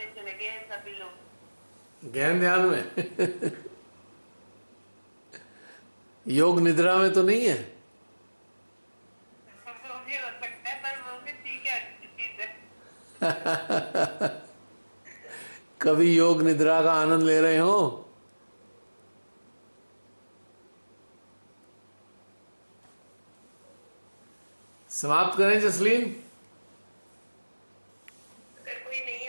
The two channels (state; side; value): inverted; both; correlation -1.00